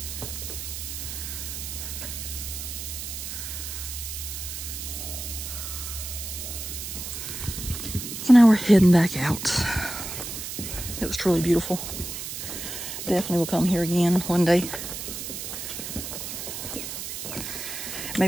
So now we're heading back out. It was truly beautiful. Definitely will come here again one day.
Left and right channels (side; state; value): right; noise; hiss, 7 dB below the sound